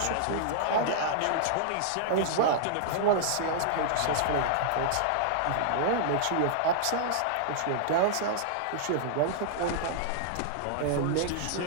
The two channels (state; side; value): different; both; correlation -0.01